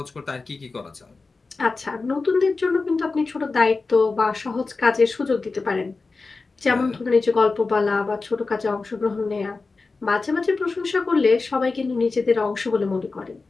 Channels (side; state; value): right; quieter; 3.9 dB